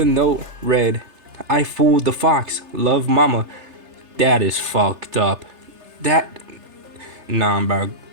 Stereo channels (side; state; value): left; late; 3.3 ms